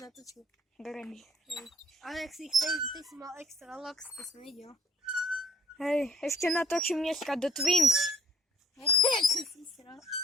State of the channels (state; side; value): normal; both; correlation 0.60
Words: Grený. Hej. Ale ak si ty si mal extra locks, to som videl. Hej, ešte natočím dneska do Twins. Hej, čo si sral.